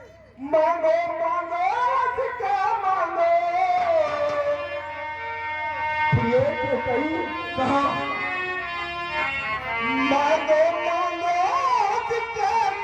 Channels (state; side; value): identical; both; correlation 1.00